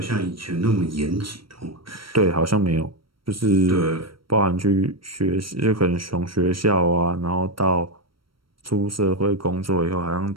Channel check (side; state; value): left; late; 0.74 ms